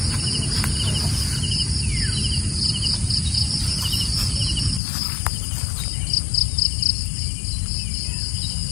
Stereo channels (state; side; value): drops out; right; at 4.8 s